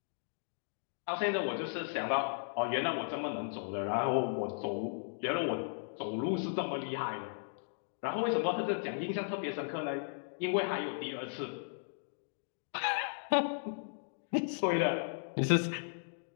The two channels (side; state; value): right; silent; digital silence